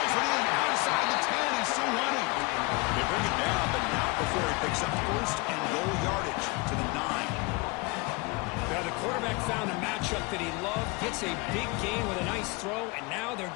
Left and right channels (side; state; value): right; quieter; 26.3 dB